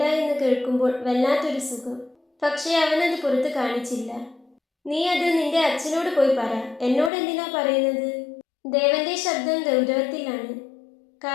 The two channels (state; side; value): drops out; right; at 7.1 s